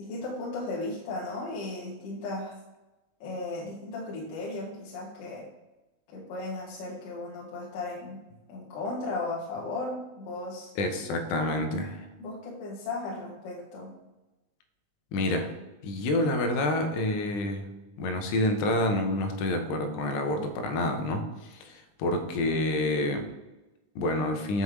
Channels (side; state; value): right; late; 20 ms